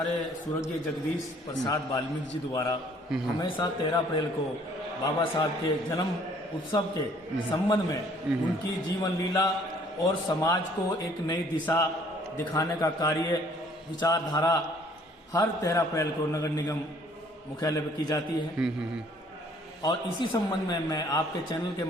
स्वर्गीय जगदीश प्रसाद वाल्मीकि जी द्वारा हमेशा 13 अप्रैल को बाबा साहब के जन्म उत्सव के संबंध में उनकी जीवन लीला और समाज को एक नई दिशा दिखाने का कार्य, विचारधारा हर 13 अप्रैल को नगर निगम मुख्यालय पर की जाती है। और इसी संबंध में मैं आपके चैनल के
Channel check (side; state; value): both; normal; correlation 0.59